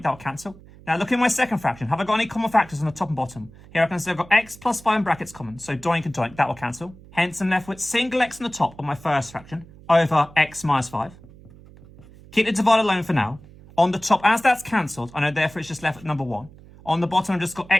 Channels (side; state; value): right; noise; hum, 21 dB below the sound